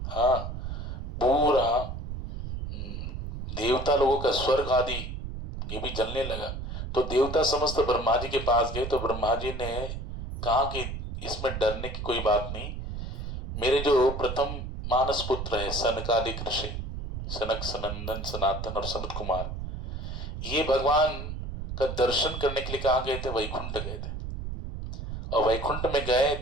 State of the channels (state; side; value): noise; right; rumble, 6 dB below the sound